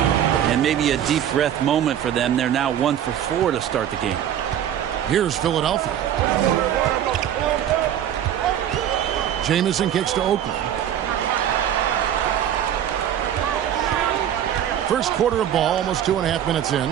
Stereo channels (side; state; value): left; quieter; 10.2 dB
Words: And maybe a deep breath moment for them. They're now 1 for 4 to start the game. Here's Philadelphia. Jamison kicks to Oakley. First quarter of ball, almost 2.5 minutes in.